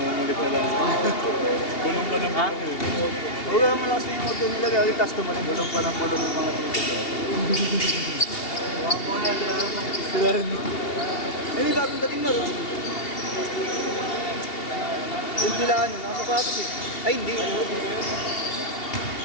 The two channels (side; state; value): right; late; 2.8 ms